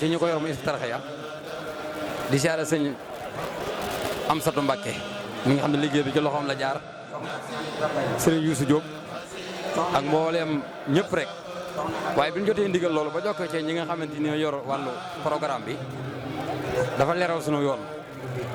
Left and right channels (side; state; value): both; identical; correlation 1.00